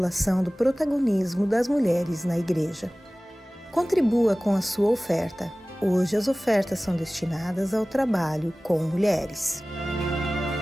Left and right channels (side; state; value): both; normal; correlation 0.98